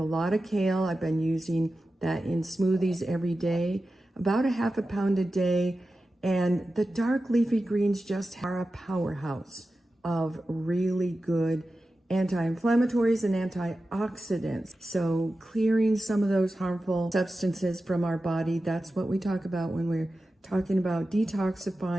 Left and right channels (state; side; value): normal; both; correlation 0.93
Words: lot of kale. I've been using that in smoothies every day, about a half a pound a day. And the dark leafy greens just are a powerhouse of really good anti-inflammatories and antioxidants. So clearing some of those harmful substances from our body, that's what we talk about when we're talking about